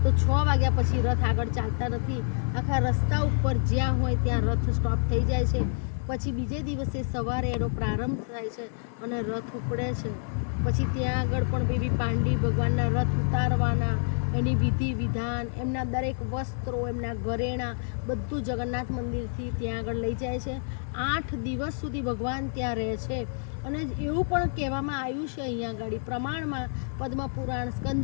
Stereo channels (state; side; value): silent; right; 59 dB below the other